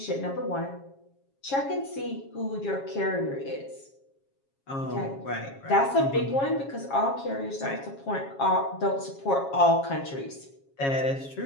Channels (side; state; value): right; late; 7.3 ms